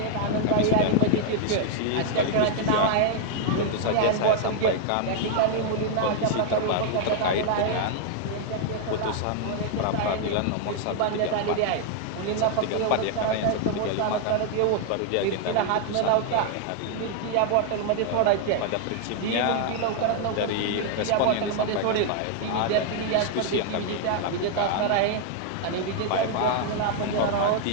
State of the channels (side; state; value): both; different; correlation 0.00